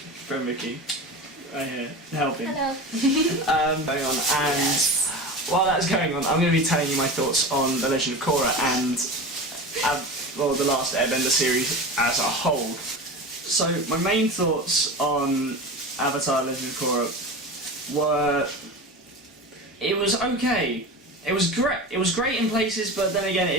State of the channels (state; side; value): normal; both; correlation 0.29